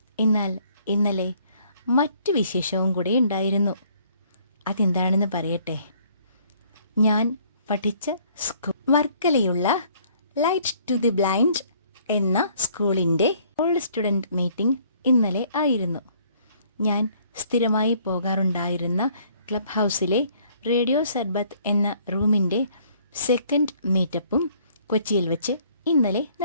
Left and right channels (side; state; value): both; inverted; correlation -0.61